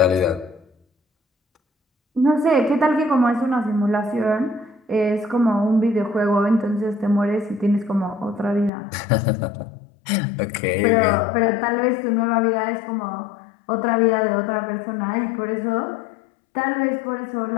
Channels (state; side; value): drops out; right; at 8.7 s